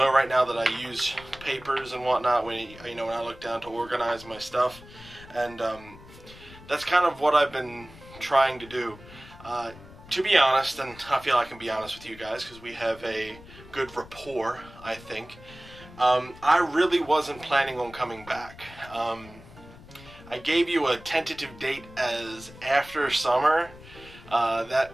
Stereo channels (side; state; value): left; noise; rumble, 19 dB below the sound